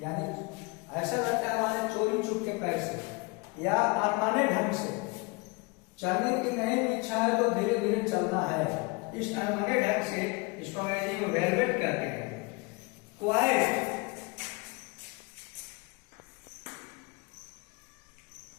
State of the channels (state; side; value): quieter; right; 27.8 dB